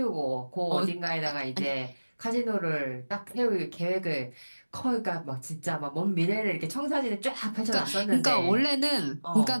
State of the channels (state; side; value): inverted; both; correlation -1.00